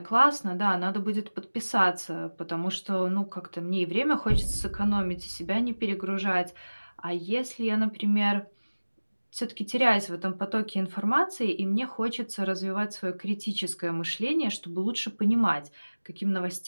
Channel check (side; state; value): both; inverted; correlation -1.00